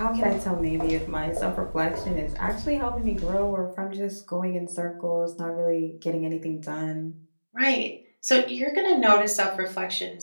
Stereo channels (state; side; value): inverted; both; correlation -1.00